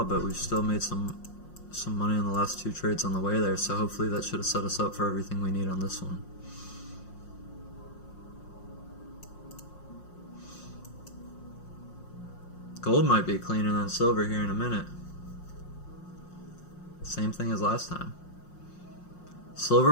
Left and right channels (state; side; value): late; right; 5.6 ms